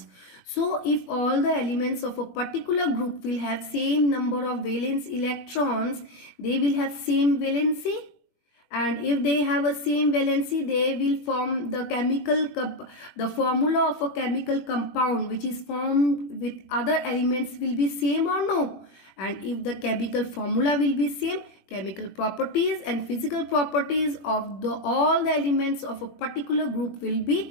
So if all the elements of a particular group will have same number of valence electrons, they will have same valency. And if they have a same valency, they will form the formula of a chemical compound which is formed with other elements will be same or no. And if the chemical formula will be same, chemical properties and physical properties of all the elements of a particular group will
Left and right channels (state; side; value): late; right; 21 ms